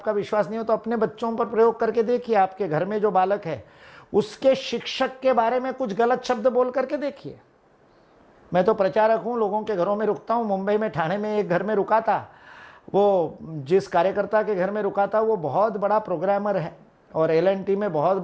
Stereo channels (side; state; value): both; identical; correlation 1.00